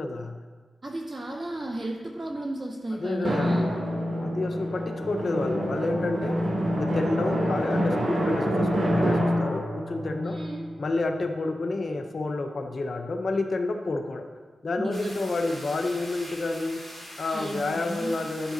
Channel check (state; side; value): normal; both; correlation 0.92